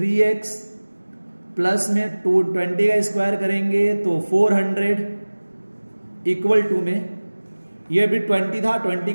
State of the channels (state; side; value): inverted; both; correlation -1.00